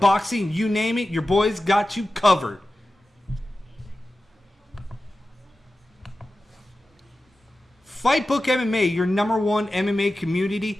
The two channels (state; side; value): normal; both; correlation 0.94